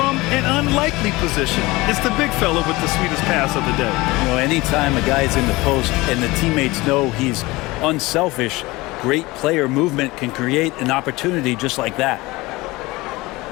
an unlikely position. It's the big fella with the sweetest pass of the day. You know, anytime a guy's in the post and the teammates know he's unselfish, great player movement can create an opportunity just like that.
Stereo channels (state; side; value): quieter; right; 21.4 dB